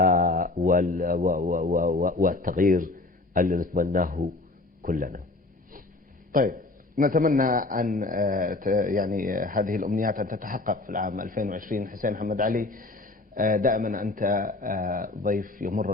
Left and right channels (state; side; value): quieter; right; 3.1 dB